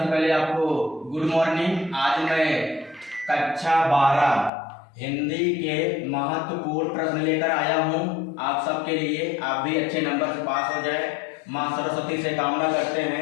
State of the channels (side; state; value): right; drops out; at 4.5 s